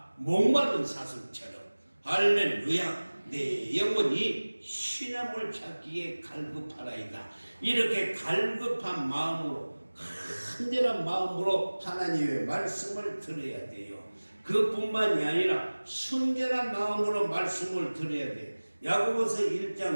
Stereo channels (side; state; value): both; inverted; correlation -1.00